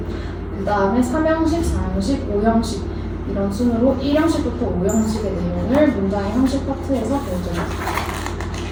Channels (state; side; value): identical; both; correlation 1.00